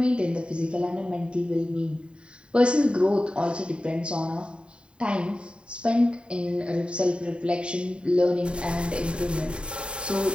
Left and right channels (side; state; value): left; late; 0.053 ms